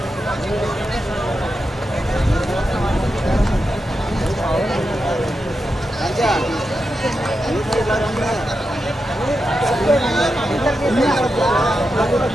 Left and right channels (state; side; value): normal; both; correlation 0.88